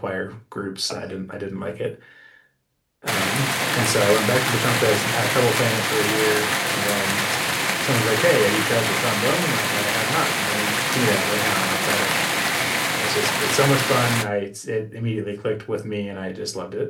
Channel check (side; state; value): both; identical; correlation 1.00